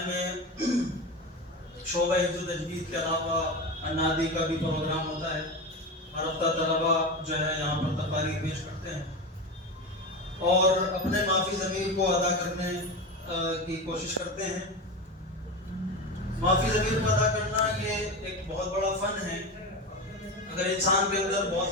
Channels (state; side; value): normal; both; correlation 0.22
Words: میں شعبہ حفظ و تجوید کے علاوہ انادی کا بھی پروگرام ہوتا ہے۔ ہر ہفتہ طلباء جو ہے یہاں پر تقاریر پیش کرتے ہیں اور اپنے مافی ضمیر کو ادا کرنے کی کوشش کرتے ہیں۔ معافی ضمیر کو ادا کرنا یہ ایک بہت بڑا فن ہے۔ اگر انسان کے اندر بہت